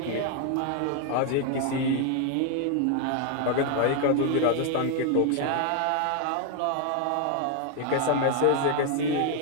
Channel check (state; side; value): different; both; correlation 0.00